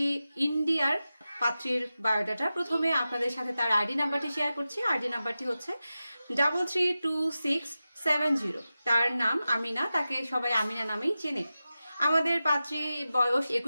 ইন্ডিয়ার পাত্রীর বায়োডাটা। প্রথমে আপনাদের সাথে তার আইডি নাম্বারটি শেয়ার করছি। আইডি নাম্বারটি হচ্ছে 332670। তার নাম আমিনা, তাকে সবাই আমিনা নামেই চেনে। আমাদের পাত্রী বয়স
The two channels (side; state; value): both; inverted; correlation -0.94